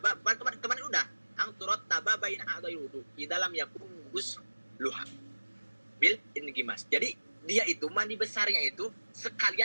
kemarin udah ang turot taba bain a'dai wudu di dalam yakun gus luha bil ingimas. Jadi dia itu mandi besarnya itu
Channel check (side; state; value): both; inverted; correlation -1.00